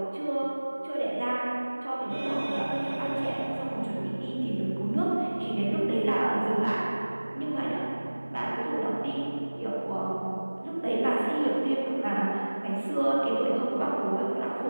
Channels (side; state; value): both; inverted; correlation -1.00